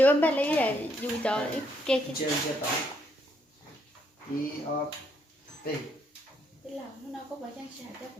em bé lấy là dù cho kê cái Chưa đó. I O P. cái lòng nó có phải trang trải cho của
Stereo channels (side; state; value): both; normal; correlation 0.73